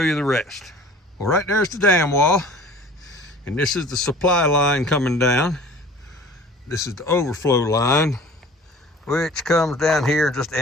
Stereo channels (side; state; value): both; normal; correlation 0.46